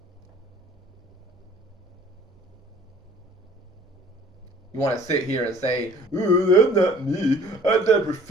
You want to sit here and say, "Ooh, that's not me. I never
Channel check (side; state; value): both; normal; correlation 0.52